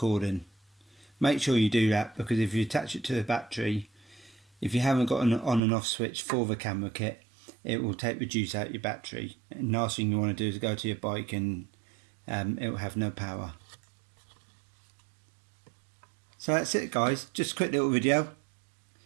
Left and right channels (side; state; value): left; drops out; at 5.6 s